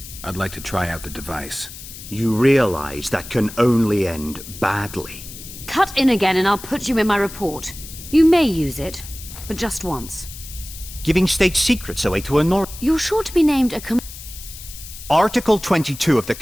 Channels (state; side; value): noise; left; hiss, 14 dB below the sound